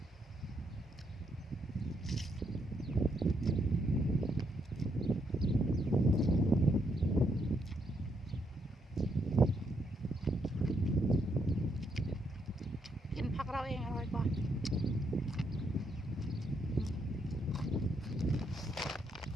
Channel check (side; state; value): both; normal; correlation 0.76